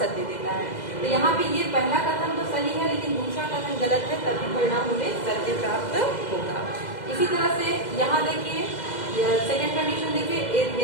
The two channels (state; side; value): late; right; 2.0 ms